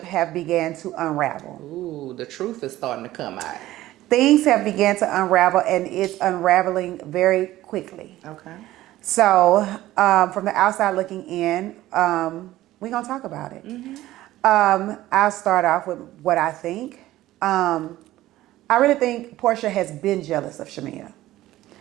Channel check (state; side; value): quieter; left; 15.5 dB